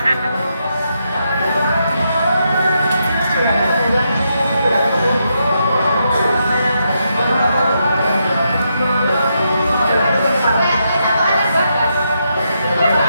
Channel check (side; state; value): both; inverted; correlation -0.82